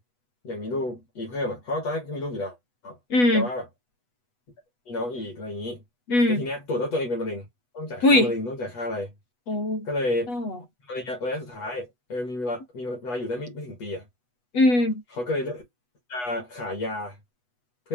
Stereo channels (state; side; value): late; right; 8.2 ms